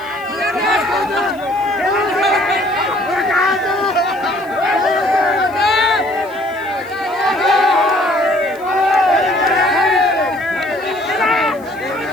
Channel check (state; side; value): noise; left; hiss, 27 dB below the sound